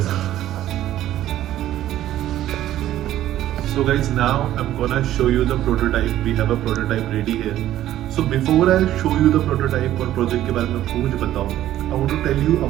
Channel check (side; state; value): left; quieter; 13.1 dB